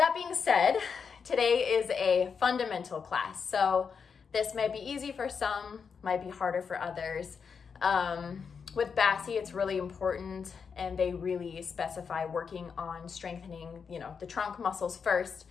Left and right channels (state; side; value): quieter; right; 6.1 dB